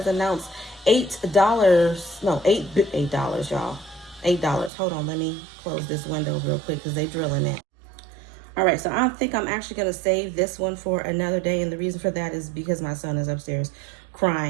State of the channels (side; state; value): left; drops out; at 4.7 s